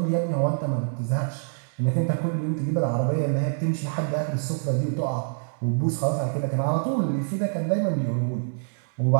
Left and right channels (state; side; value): silent; left; digital silence